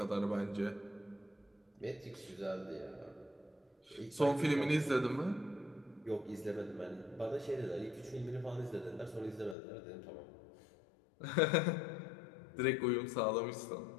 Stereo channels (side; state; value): right; drops out; at 9.6 s